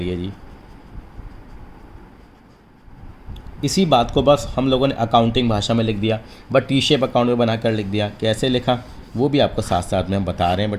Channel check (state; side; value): identical; both; correlation 1.00